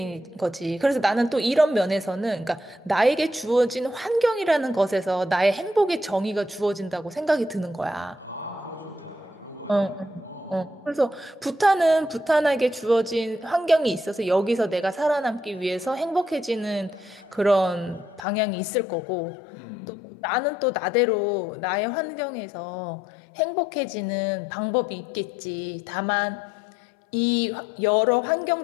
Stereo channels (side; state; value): right; drops out; at 18.2 s